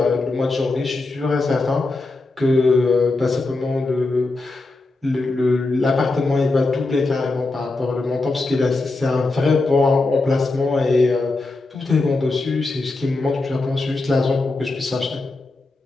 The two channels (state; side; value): quieter; right; 3.3 dB